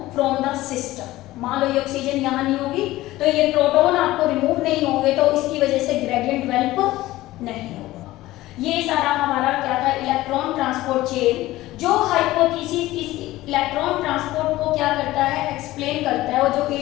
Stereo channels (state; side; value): quieter; right; 17.0 dB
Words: from the system. मान लो ये ऑक्सीजन यहाँ नहीं होगी तो ये प्रोटॉन आपको रिमूव नहीं होंगे, तो इसकी वजह से ग्रेडियंट डेवलप नहीं होगा। ये सारा हमारा क्या था, इलेक्ट्रॉन ट्रांसपोर्ट चेन। जो हाइपोथेसिस इस इलेक्ट्रॉन ट्रांसपोर्ट को क्या करता है, एक्सप्लेन करता है, और जो